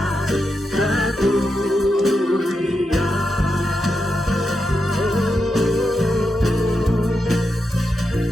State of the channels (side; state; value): both; normal; correlation 0.86